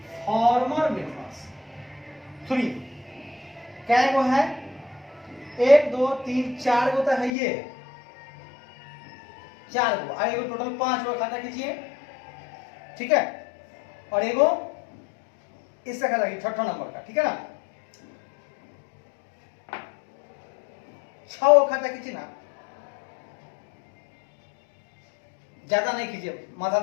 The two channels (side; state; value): right; drops out; at 7.3 s